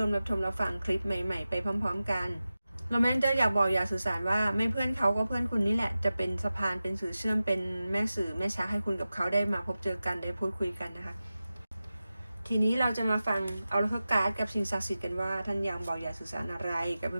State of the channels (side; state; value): both; inverted; correlation -0.94